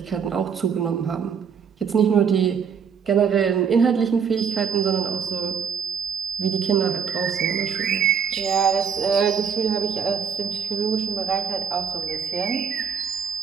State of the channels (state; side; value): quieter; left; 6.9 dB